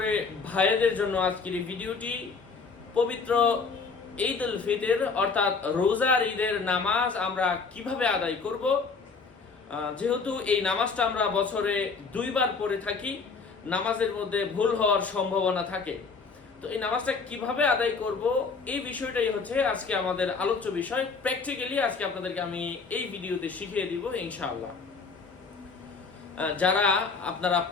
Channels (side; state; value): right; quieter; 4.8 dB